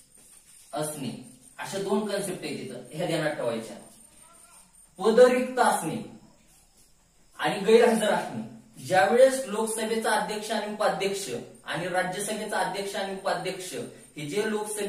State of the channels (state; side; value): identical; both; correlation 1.00